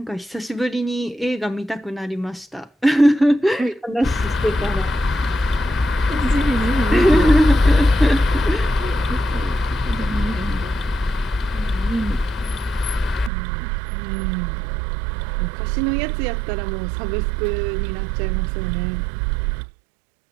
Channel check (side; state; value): left; drops out; at 13.3 s